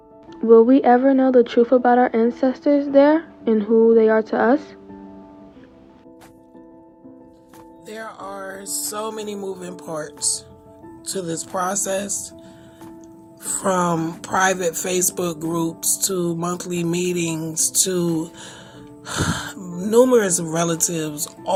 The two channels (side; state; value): both; identical; correlation 1.00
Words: Will we ever know the truth about our ancestors there and who they are to us? There are so many moving parts to this process, from private Facebook groups to monthly meetings to numerous relatives